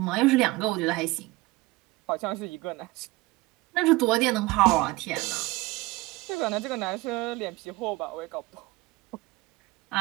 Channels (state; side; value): quieter; left; 21.2 dB